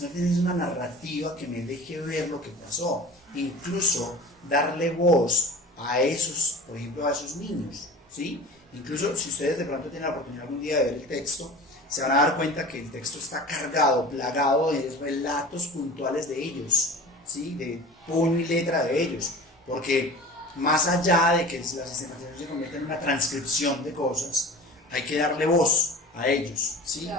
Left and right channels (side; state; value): both; normal; correlation 0.38